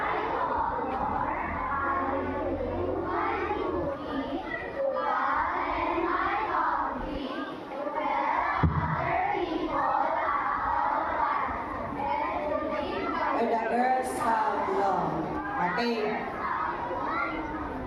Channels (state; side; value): identical; both; correlation 1.00